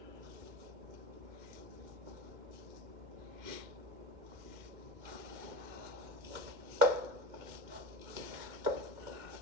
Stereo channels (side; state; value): left; late; 2.1 ms